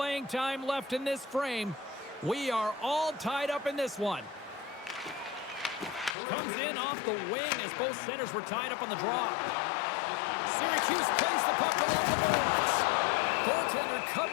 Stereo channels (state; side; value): drops out; right; at 6.2 s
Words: time left in this frame. We are all tied up in this one. Comes in off the wing as both centers were tied up on the draw. Syracuse plays the puck along the boards. Goaltender